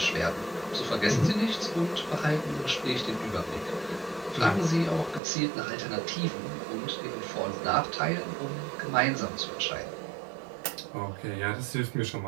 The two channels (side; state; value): left; drops out; at 5.2 s